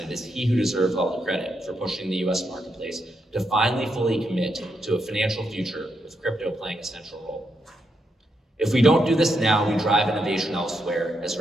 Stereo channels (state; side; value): normal; both; correlation 0.81